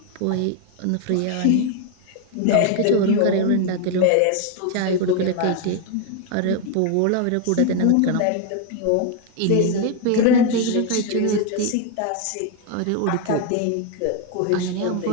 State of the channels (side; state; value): both; different; correlation 0.01